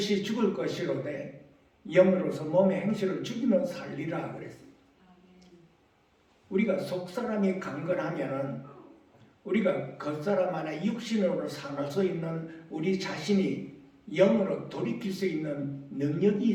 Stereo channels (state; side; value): identical; both; correlation 1.00